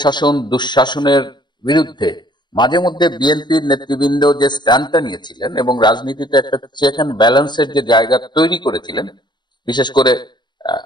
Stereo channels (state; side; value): late; right; 0.22 ms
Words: দুঃশাসনের বিরুদ্ধে মাঝে মধ্যে বিএনপির নেতৃবৃন্দ যে স্ট্যান্ডটা নিয়েছিলেন এবং রাজনীতিতে একটা চেক অ্যান্ড ব্যালেন্সের যে জায়গা তৈরি করেছিলেন, বিশেষ করে